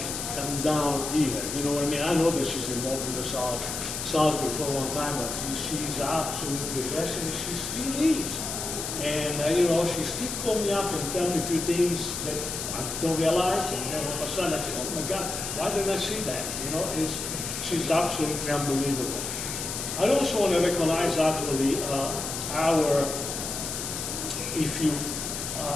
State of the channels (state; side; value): noise; left; hiss, 5 dB below the sound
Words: come down here. You know what I mean? I know that she's involved with the Salisbury for a long time, but she's absolutely a blessing. She still is. And, you know, she still call me up and tell me a few things that I don't realize. And then all of a sudden I say, oh my God, why didn't I see that? You know, she's absolutely unbelievable. I also want to recognize actually